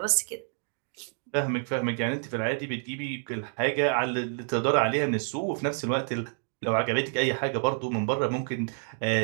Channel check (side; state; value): left; silent; 59 dB below the other